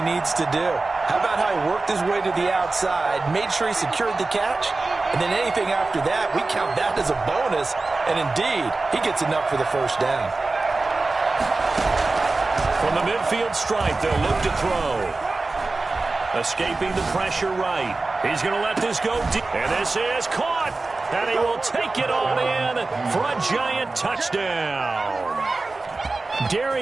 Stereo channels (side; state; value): left; quieter; 3.4 dB